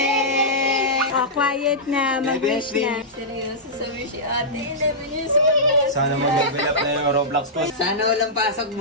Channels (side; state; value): both; normal; correlation -0.14